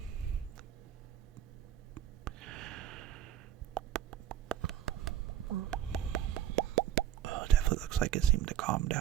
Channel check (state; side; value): quieter; left; 11.1 dB